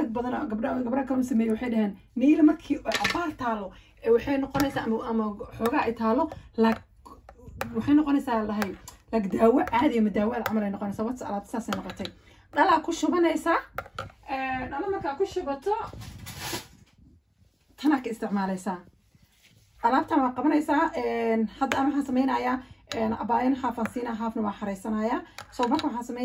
بدنا قبل كانوا سميو وحيدهن نيل markii abaar taalo waxay noqonaysaa ama xogaa ay taalo la waxay noqonaysaa lahay lag daawo caadi ama daawo amal ay noqonaysaa wad alaab saasay noqotay dhala ku shubanaysaa dhala marka ku shubato tana ka isticmaalaysaa alaabtan waa qabanaysaa hadda ama waxaan sameynayaa abaayan xaafan siina xaafna waa xareysanayaa soo marka waxaan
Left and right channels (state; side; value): identical; both; correlation 1.00